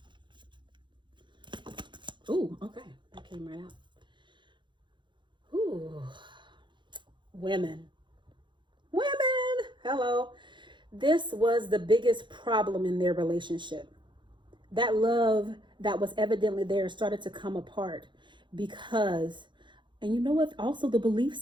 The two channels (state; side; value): late; left; 0.23 ms